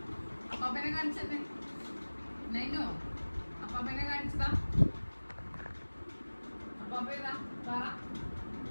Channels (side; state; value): both; inverted; correlation -1.00